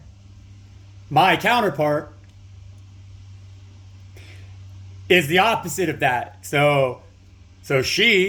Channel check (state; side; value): identical; both; correlation 1.00